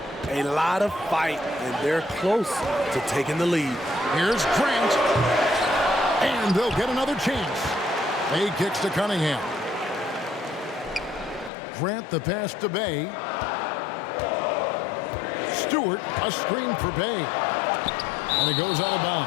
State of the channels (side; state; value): right; drops out; at 11.5 s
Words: a lot of fight, and they're close to taking the lead. Here's Grant. And they'll get another chance. Bay kicks to Cunningham. Grant the pass to Bay. Stewart, a screen for Bay. And it goes out of